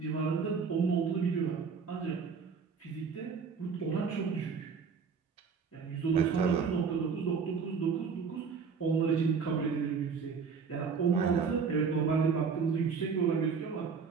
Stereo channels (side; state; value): left; quieter; 5.7 dB